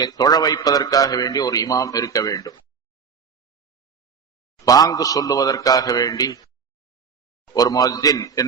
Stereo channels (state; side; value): quieter; left; 6.2 dB